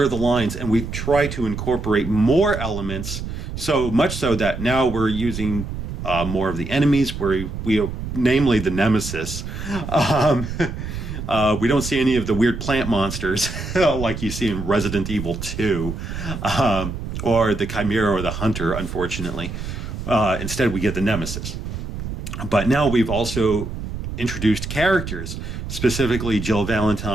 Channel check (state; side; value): noise; right; rumble, 7 dB below the sound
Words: the lines and we try to incorporate more elements, so much so that now we're using more of the enemies, where we namely the Nemesis. We don't see any of the weird plant monsters like you see in Resident Evil 2, or the Chimera or the Hunter, unfortunately. Instead, we get the Nemesis. But now we've also introduced characters, specifically Jill